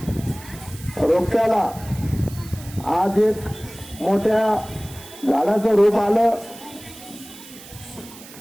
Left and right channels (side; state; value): right; noise; hiss, 18 dB below the sound